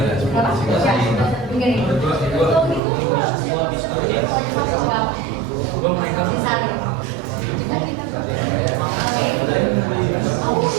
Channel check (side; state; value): left; drops out; at 2.8 s